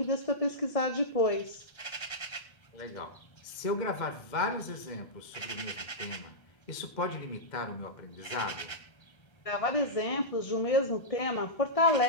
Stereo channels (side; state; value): right; late; 1.3 ms